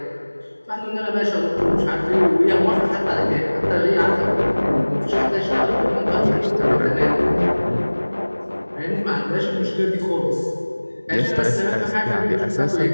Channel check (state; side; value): inverted; both; correlation -1.00